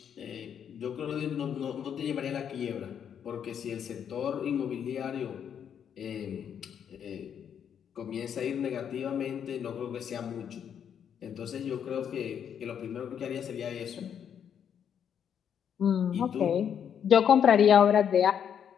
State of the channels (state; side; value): quieter; right; 8.4 dB